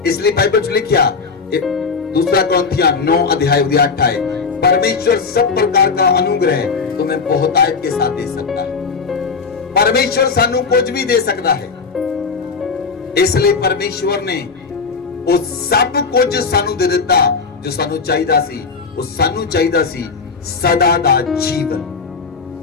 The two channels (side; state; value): right; quieter; 4.9 dB